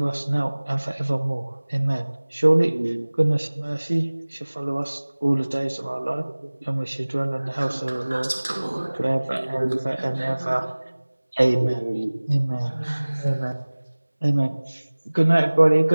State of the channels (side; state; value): both; inverted; correlation -1.00